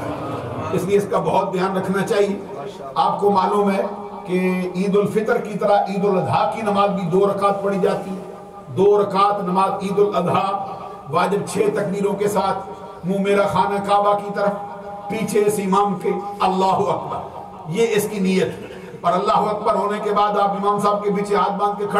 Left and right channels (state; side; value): identical; both; correlation 1.00